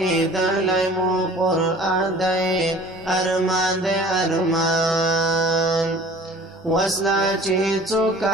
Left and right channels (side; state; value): both; normal; correlation 0.47